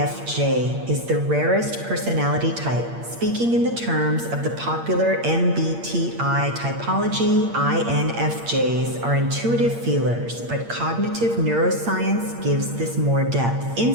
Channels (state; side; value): late; left; 8.6 ms